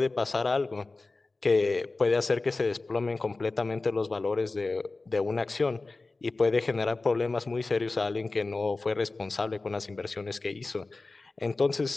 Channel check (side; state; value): right; quieter; 3.4 dB